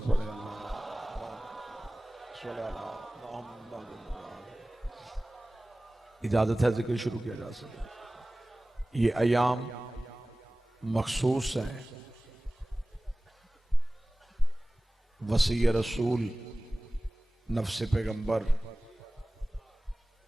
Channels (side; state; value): both; normal; correlation 0.98